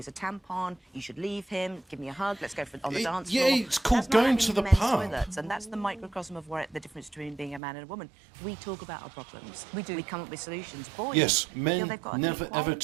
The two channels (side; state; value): left; drops out; at 7.6 s